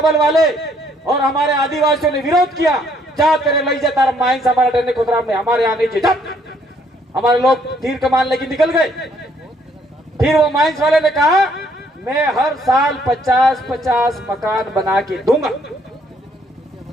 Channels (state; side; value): normal; both; correlation 0.67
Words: वाले और हमारे आदिवासियों ने विरोध किया। जा तेरे लई जाता माइंस हमारा डरने खुदरा में हमारे यहाँ नहीं जब हमारे लोग तीर कमान लेके निकल गए। फिर वो माइंस वाले ने कहा मैं हर साल 50-50 मकान बना के दूंगा।